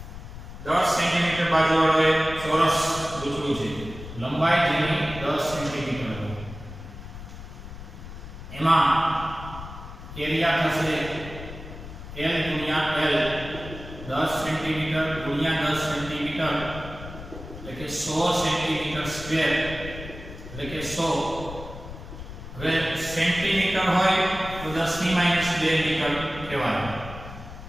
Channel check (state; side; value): noise; left; rumble, 12 dB below the sound